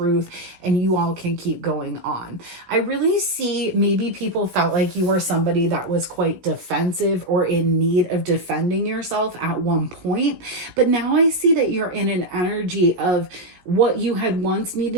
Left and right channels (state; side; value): late; left; 16 ms